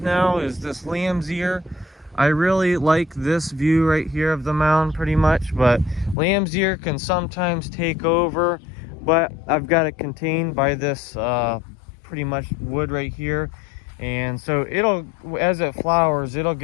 is this lamb's ear. I really like this view right here of the mound pretty much, but lamb's ear can sometimes take over, but I've got it contained by this pretty much wood right here. And so it'll, as it flowers, it'll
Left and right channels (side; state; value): right; drops out; at 6.2 s